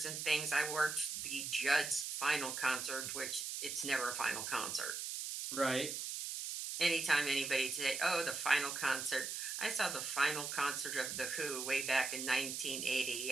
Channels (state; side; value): noise; right; hiss, 4 dB below the sound